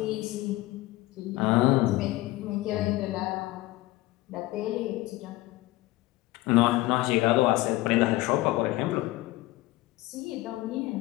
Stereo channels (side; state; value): right; quieter; 18.4 dB